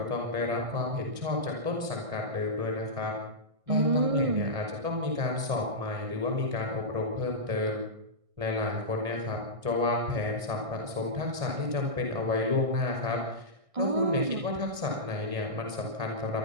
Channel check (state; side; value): late; left; 1.6 ms